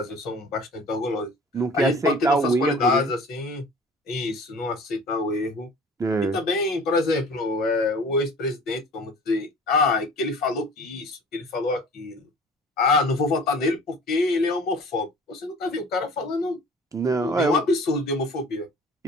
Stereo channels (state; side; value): normal; both; correlation 0.45